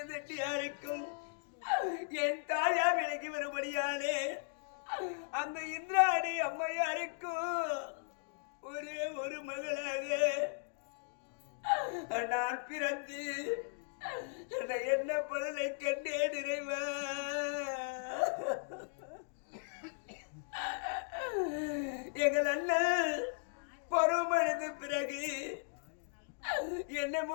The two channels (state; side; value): silent; right; digital silence